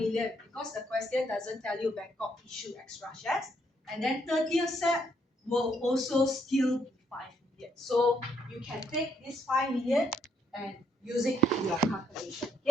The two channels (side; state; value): both; normal; correlation 0.72